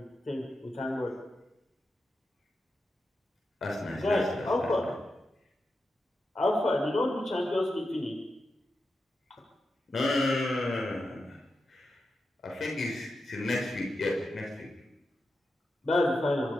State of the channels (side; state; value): both; normal; correlation 0.89